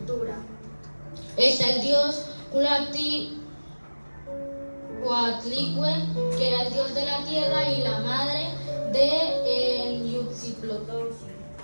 Está el dios Coatlicue, que era el dios de la tierra y la madre de Huitzilopochtli.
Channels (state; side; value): inverted; both; correlation -1.00